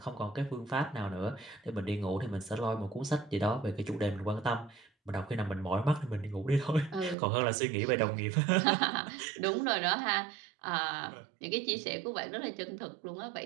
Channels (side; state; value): left; drops out; at 7.2 s